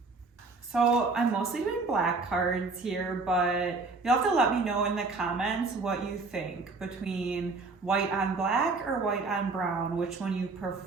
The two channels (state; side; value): quieter; left; 3.9 dB